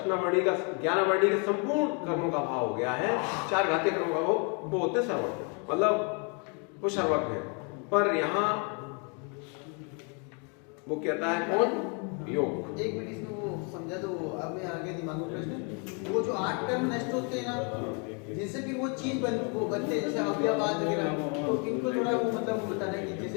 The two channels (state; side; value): quieter; right; 36.7 dB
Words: का ज्ञानावर्णी के संपूर्ण कर्मों का अभाव हो गया है, चार घातीय कर्मों का वो होते हैं सर्वज्ञ, मतलब वो सर्वज्ञ है। पर यहाँ वो कहता है कौन? योग। एक मिनट इसमें वो समझा दो, अब मैं आगे दिमाग में प्रश्न, वो जो 8 कर्म नष्ट होते हैं ना, जिनसे भी वो चीज वो बनते हैं, जैसे अव्ययवाद वगैरह, तो इनको थोड़ा वो मतलब बताना है कि